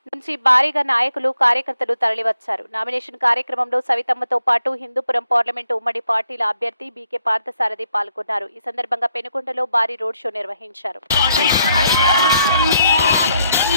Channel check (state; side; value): inverted; both; correlation -0.74